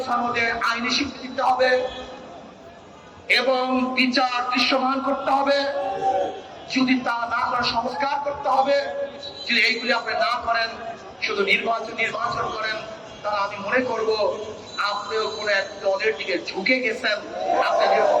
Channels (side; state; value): both; identical; correlation 1.00